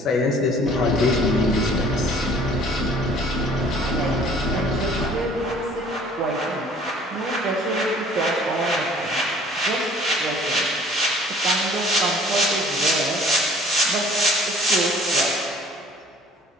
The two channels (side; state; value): both; normal; correlation 0.53